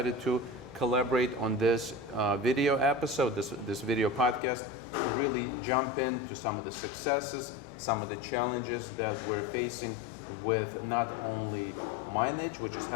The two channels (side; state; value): right; drops out; at 4.4 s